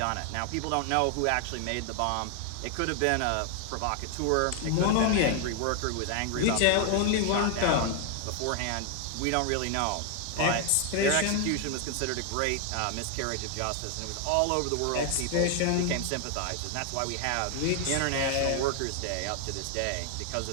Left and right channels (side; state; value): both; different; correlation 0.00